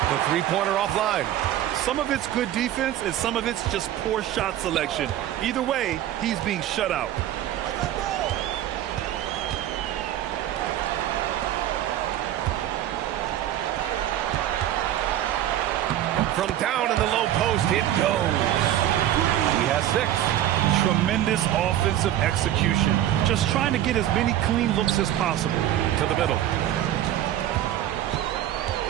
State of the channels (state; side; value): quieter; left; 12.3 dB